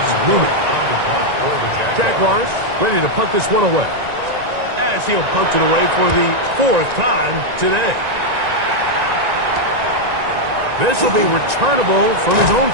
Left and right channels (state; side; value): late; left; 1.9 ms